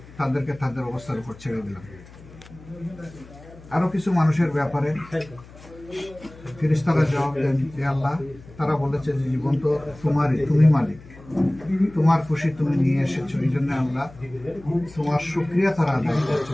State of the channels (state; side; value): noise; left; hum, 20 dB below the sound